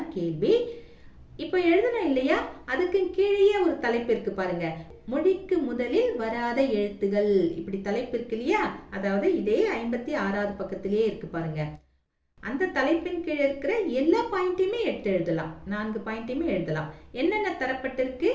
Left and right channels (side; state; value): both; identical; correlation 1.00